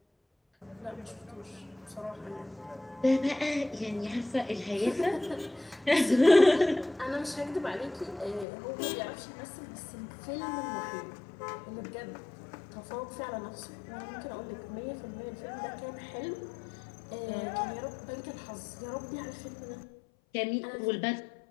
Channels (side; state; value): right; drops out; at 8.5 s